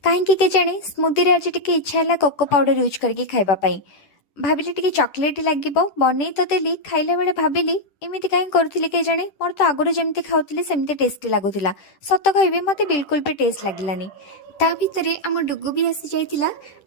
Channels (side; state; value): right; late; 10 ms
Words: कहीं के जाने स्मूदी रे आज टिके इच्छा है कोको पाउडर यूज करके खावाई। भाविली टिके चॉकलेट लगे बन तो देली खाइला बेले भाविली एमती कहीं करुली के जाने मोर तो आगुरी जमी खाऊली सेमती टेस्टी लगुला। सत कह मत बिल्कुल भी टेस्ट लगलानी। ता भितरे आम डुगु भी आसी जाइतिला।